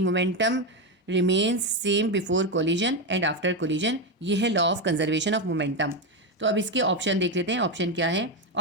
remains same before collision and after collision. ये है law of conservation of momentum. तो अब इसके ऑप्शन देख लेते हैं। ऑप्शन क्या है?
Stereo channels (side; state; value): both; normal; correlation 0.10